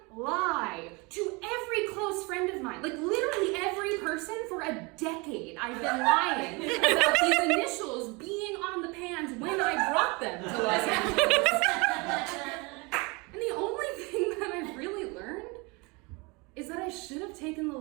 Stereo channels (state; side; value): quieter; left; 27.7 dB